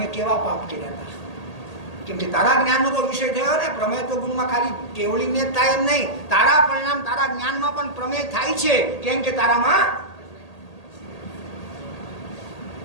કેવા પાપ કર્યા હતા? કેમ કે તારા જ્ઞાનનો તો વિષય થયો ને. પ્રમેય તો ગુણમાં ખાલી કેવળીને જ થાય એમ નહીં, તારા પરિણામ તારા જ્ઞાનમાં પણ પ્રમેય થાય છે. કેમ કે તારામાં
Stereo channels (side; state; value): right; late; 1.8 ms